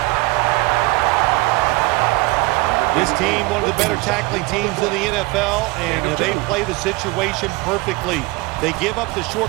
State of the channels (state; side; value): quieter; left; 23.4 dB